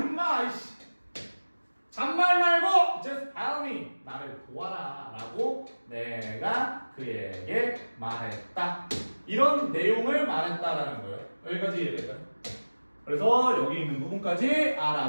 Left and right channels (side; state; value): both; inverted; correlation -1.00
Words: 이씨. 잔말 말고 just help me. 나를 도와라 라고 내가 그에게 말했다. 이런 내용을 말했다라는 거예요. 여기까지 이해될까요? 그래서 여기 있는 부분까지